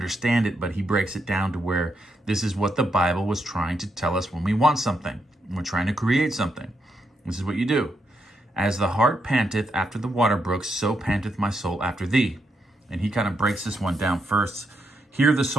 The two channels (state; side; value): normal; both; correlation 0.80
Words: it, but he breaks it down to where this is what the Bible was trying to tell us when we want something. We're trying to create something. This is what you do. As the heart panteth after the water brooks, so panteth my soul after thee. And he kind of breaks this one down first. Here the